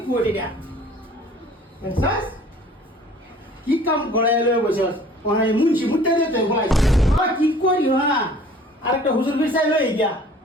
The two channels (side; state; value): both; normal; correlation 0.51